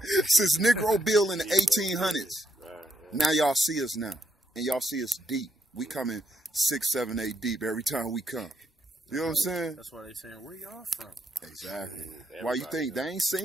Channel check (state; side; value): normal; both; correlation 0.77